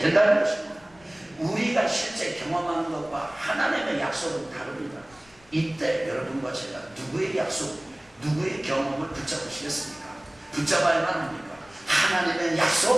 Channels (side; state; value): left; noise; rumble, 29 dB below the sound